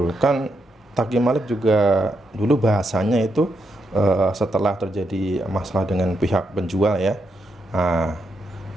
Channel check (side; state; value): both; normal; correlation 0.81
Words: kan Taqi Malik juga dulu bahasanya itu setelah terjadi masalah dengan pihak penjual ya. Nah,